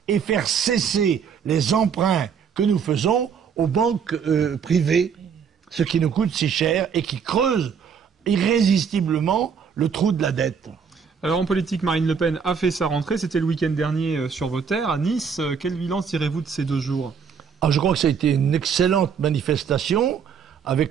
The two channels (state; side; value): quieter; left; 6.6 dB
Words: et faire cesser les emprunts que nous faisons aux banques privées, ce qui nous coûte si cher et qui creuse irrésistiblement le trou de la dette. Alors en politique, Marine Le Pen a fait sa rentrée, c'était le week-end dernier sur vos terres, à Nice. Quel bilan tirez-vous de ces 2 jours? Je crois que ça a été une excellente manifestation,